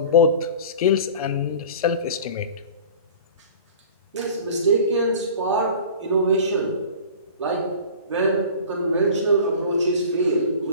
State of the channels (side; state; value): both; inverted; correlation -0.40